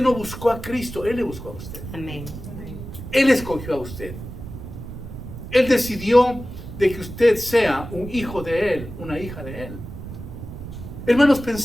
no buscó a Cristo, Él le buscó a usted. Amén. Él escogió a usted. Él decidió de que usted sea un hijo de Él, una hija de Él. Hermanos,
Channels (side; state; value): right; noise; rumble, 11 dB below the sound